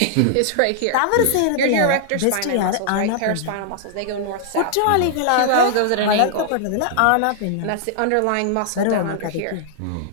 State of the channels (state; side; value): different; both; correlation -0.01